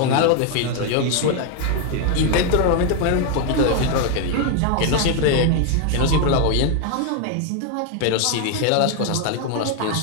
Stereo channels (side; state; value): both; different; correlation 0.01